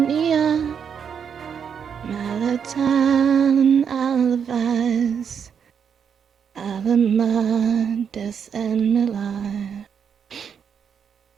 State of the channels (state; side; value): quieter; left; 7.3 dB